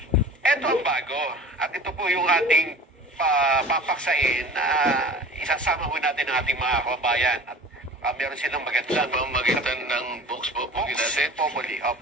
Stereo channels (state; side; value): normal; both; correlation 0.39